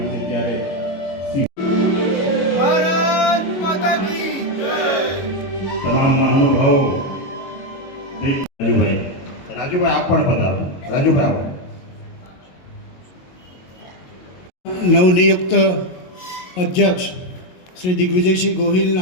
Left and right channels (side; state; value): right; late; 22 ms